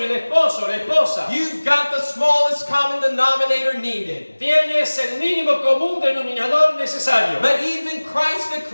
el esposo, la esposa, you've got the smallest common denominator needed. tienes el mínimo común denominador necesario. But even Christ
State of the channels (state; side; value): inverted; both; correlation -1.00